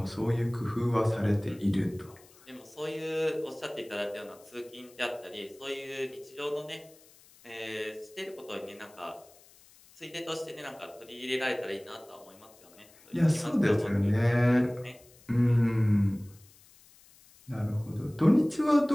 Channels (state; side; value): noise; left; hiss, 26 dB below the sound